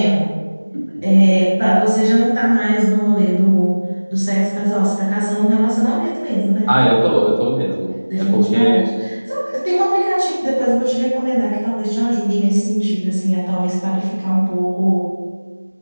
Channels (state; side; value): inverted; both; correlation -1.00